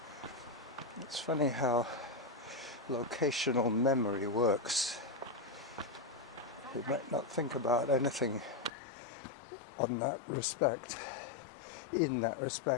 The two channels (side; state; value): right; drops out; at 8.7 s